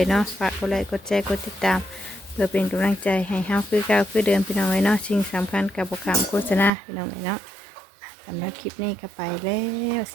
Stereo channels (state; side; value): drops out; left; at 6.7 s